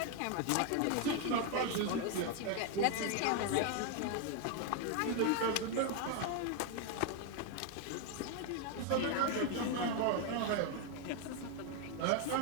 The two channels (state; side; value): different; both; correlation 0.01